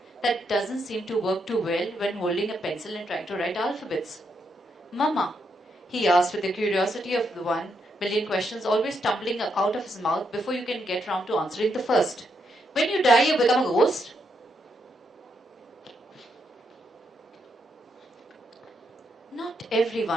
that doesn't seem to work too well when holding a pencil and trying to write alphabets. Mama, he asked with the curiosity of the 1,000,000 questions always tumbling out of his mouth before you can get round to answering the first. When you die, you become a ghost? Not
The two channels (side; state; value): both; normal; correlation 0.79